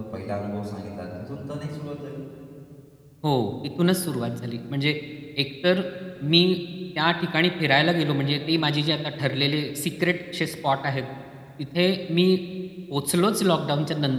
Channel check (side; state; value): both; identical; correlation 1.00